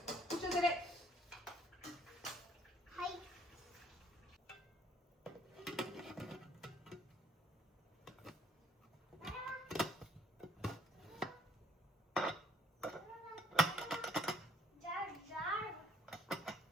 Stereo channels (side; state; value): both; normal; correlation 0.63